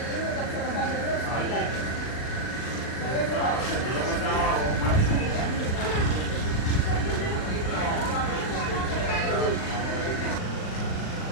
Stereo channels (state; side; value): late; right; 39 ms